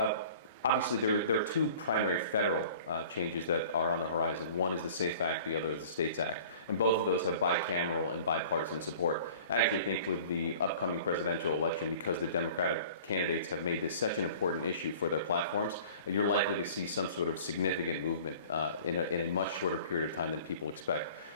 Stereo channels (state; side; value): inverted; both; correlation -0.46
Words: obviously there are two primary federal changes that are on the horizon. One is the SAFE Act, the other is the STATES Act. And both of those have bicameral and bipartisan support. I actually think with the upcoming presidential election, because the Democratic candidates have made this such an important issue for their platforms, you're likely to see some sort of significant movement in a much shorter period of time than people expect.